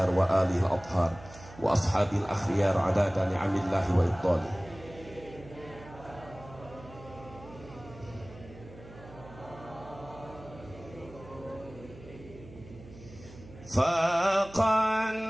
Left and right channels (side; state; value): right; noise; hum, 18 dB below the sound